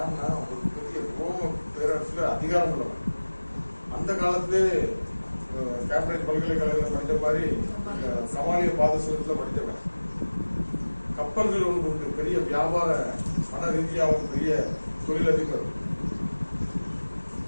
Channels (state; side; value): inverted; both; correlation -1.00